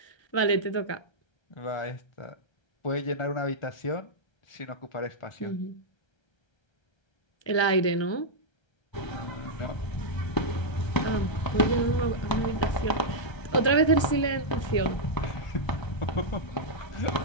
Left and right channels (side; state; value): right; late; 1.3 ms